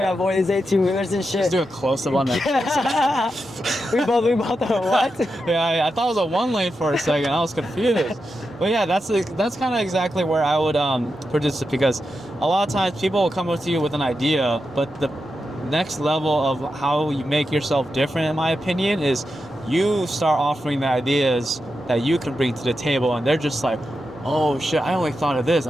to avoid these 18-wheelers and shit. Just do a close-up on that. we both what? Yeah, I thought it was a one lane for a second. I was confused. But yeah, that's kind of exactly where I would produce it, because a lot of times people will come up to you with an idea, but the next level of how you make yourself different, in my opinion, is you start offering the ideas that you can bring to the table, and they're just like, oh shit, I only thought of this.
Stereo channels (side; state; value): both; normal; correlation 0.88